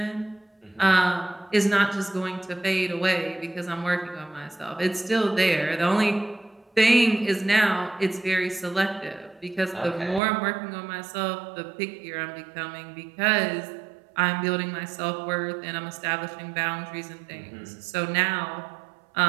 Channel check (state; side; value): drops out; left; at 10.2 s